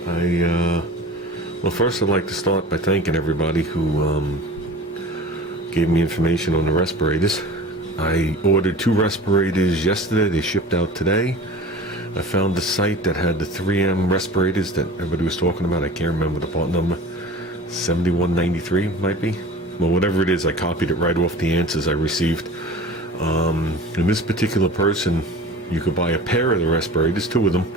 Well, first I'd like to start by thanking everybody who gave me information on the respirators. I ordered 2 respirators yesterday. They shipped out today. I found the site that had the 3M respirators that everybody was talking about. I can't remember the part number. 7193 might be. Well, whatever it is, I copied it right off the answers I received. And this particular person, you could buy a pair of the respirators, 2 of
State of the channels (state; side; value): normal; both; correlation 0.38